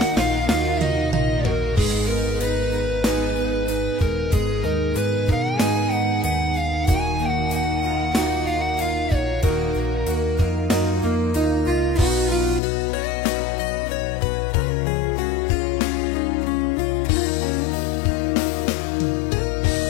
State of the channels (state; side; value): drops out; right; at 12.6 s